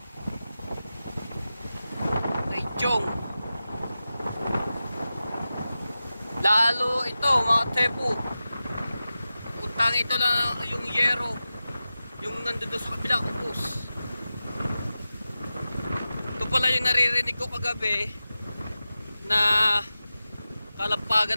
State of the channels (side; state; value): both; inverted; correlation -0.94